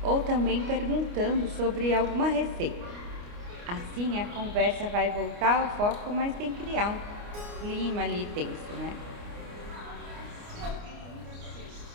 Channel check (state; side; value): late; left; 29 ms